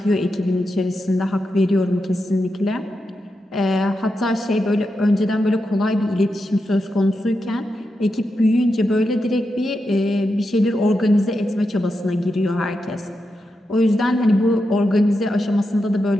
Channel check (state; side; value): normal; both; correlation 0.87